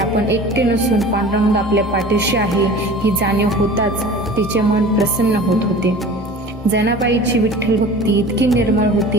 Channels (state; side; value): normal; both; correlation 0.40